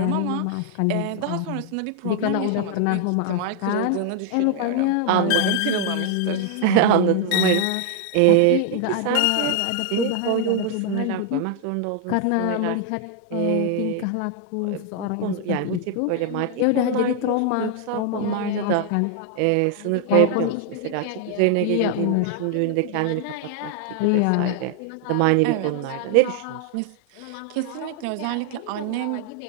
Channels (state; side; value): different; both; correlation 0.00